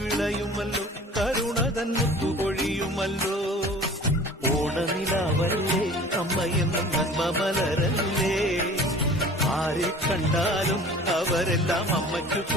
വിളയുമല്ലോ, കരുണ തൻ മുത്തുപൊഴിയുമല്ലോ. ഓണനിലാവല്ലേ അമ്മയെന്നും നന്മ മലരല്ലേ, ആരെ കണ്ടാലും അവരെല്ലാം അമ്മയ്ക്ക്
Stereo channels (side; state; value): both; normal; correlation 0.44